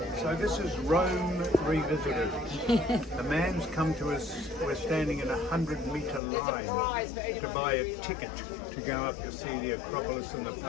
So this is Rome Revisited. The man's come to us, we're standing in a 100-metre line to buy a ticket to go up to see the Acropolis and the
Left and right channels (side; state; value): right; drops out; at 6.2 s